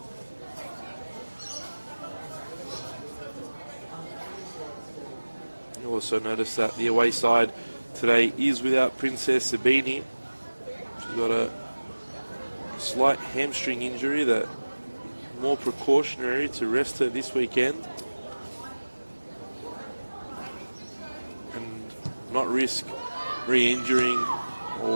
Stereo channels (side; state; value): both; inverted; correlation -1.00